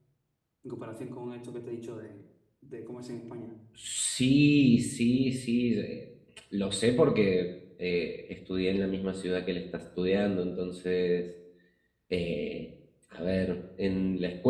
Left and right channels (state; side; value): identical; both; correlation 1.00